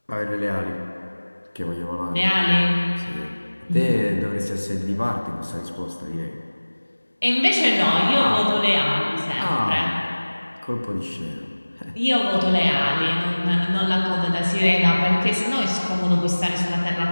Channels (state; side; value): inverted; both; correlation -1.00